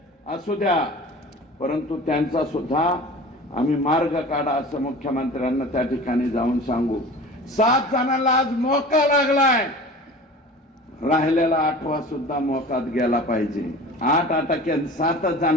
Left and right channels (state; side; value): normal; both; correlation 0.39